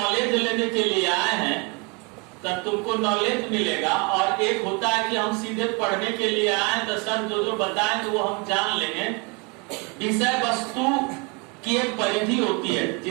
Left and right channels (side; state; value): left; quieter; 31.2 dB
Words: लेने के लिए आए हैं तब तुमको नॉलेज मिलेगा, और एक होता है कि हम सीधे पढ़ने के लिए आए तो सर जो जो बताएंगे वो हम जान लेंगे। विषय वस्तु की एक परिधि होती है,